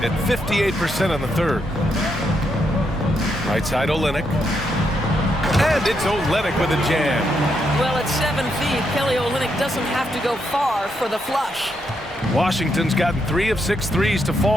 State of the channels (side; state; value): both; normal; correlation 0.79